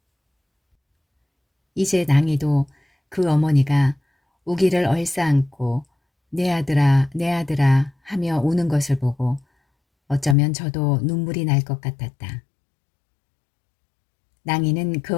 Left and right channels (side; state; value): right; drops out; at 10.4 s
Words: 이제 낭이도 그 어머니가 우기를 얼싸안고 내 아들아 하며 우는 것을 보고 어쩌면 저도 눈물이 날 것 같았다. 낭이는